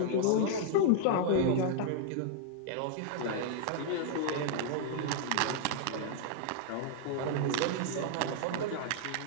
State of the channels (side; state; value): both; different; correlation -0.01